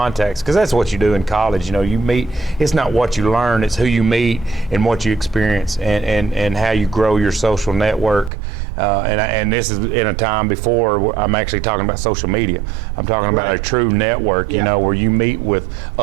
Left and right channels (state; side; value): drops out; left; at 8.3 s